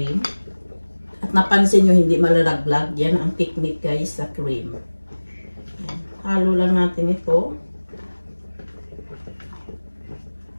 At napansin nyo, hindi malalaglag. Yan ang technique, guys, sa cream. Yan. Halo lang natin ito.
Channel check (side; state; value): both; inverted; correlation -1.00